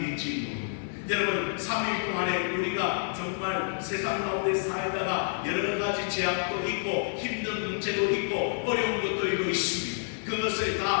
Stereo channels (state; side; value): silent; right; digital silence